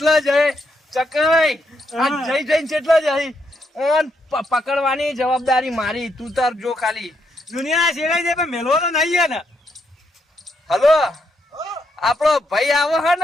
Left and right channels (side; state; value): both; normal; correlation 0.77